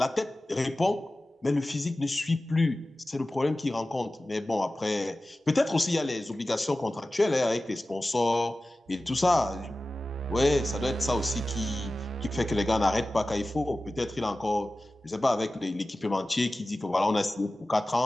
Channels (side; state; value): both; normal; correlation 0.96